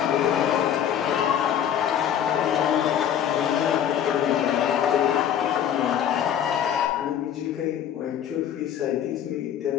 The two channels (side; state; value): right; quieter; 9.6 dB